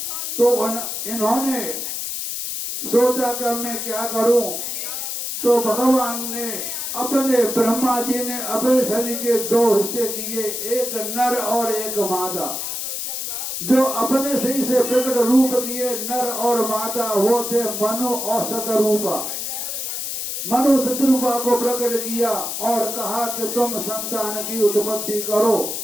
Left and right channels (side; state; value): left; noise; hiss, 4 dB below the sound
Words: तो इन्होंने सोचा कि मैं क्या करूं। तो भगवान ने अपने ब्रह्मा जी ने अपने शरीर के दो हिस्से किए, एक नर और एक मादा। जो अपने शरीर से प्रकट रूप किए नर और मादा वो थे मनु और शतरूपा। मनु शतरूपा को प्रकट किया और कहा कि तुम संतान की उत्पत्ति करो।